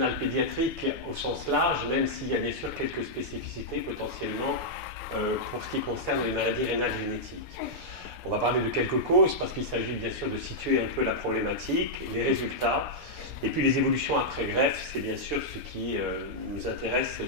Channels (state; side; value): late; left; 6.9 ms